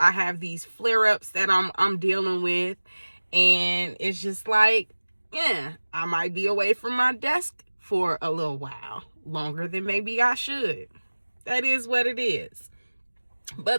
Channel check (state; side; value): inverted; both; correlation -1.00